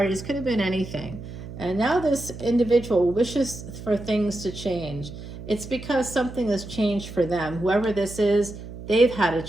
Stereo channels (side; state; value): right; noise; hum, 12 dB below the sound